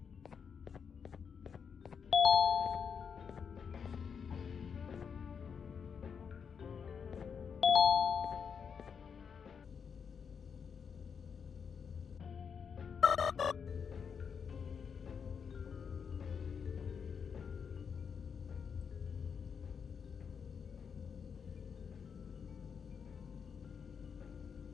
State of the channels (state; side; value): quieter; right; 6.6 dB